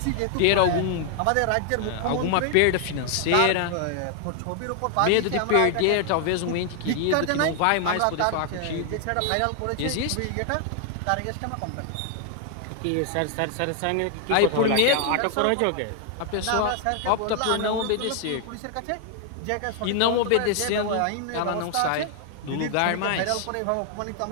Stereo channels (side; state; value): both; different; correlation 0.00